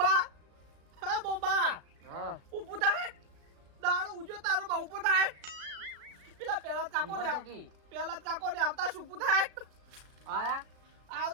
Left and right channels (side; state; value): left; late; 36 ms